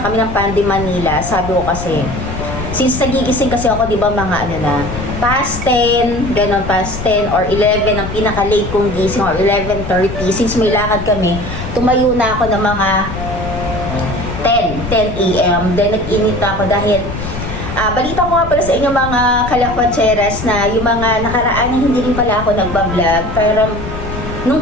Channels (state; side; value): noise; left; rumble, 8 dB below the sound